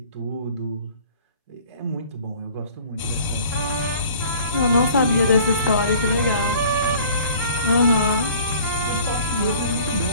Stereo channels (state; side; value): inverted; both; correlation -0.50